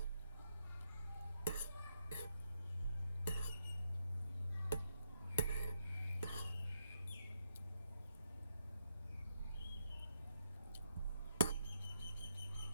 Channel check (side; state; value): both; inverted; correlation -0.79